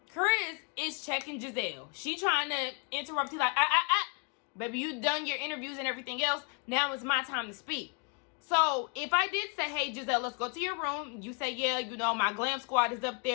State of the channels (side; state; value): right; quieter; 36.0 dB